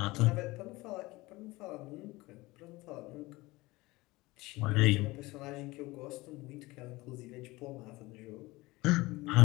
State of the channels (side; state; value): right; quieter; 21.1 dB